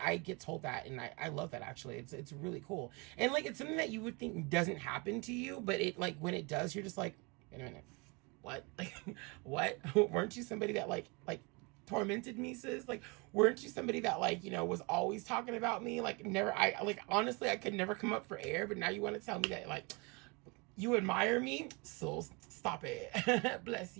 get told that, and I love that. Actually, it's really cool. And like it's something that you would think doesn't happen to you, but it, like, when it does, you're just like, wait a minute, what? Like, what? Weren't you somebody that like tormented me, sis? Like, weren't you somebody that like, was always talking about me? Like, never. I like, honestly, I could never come up for air, but now you want to tell me that like you admire me? So stop it. Bless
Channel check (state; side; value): quieter; left; 29.4 dB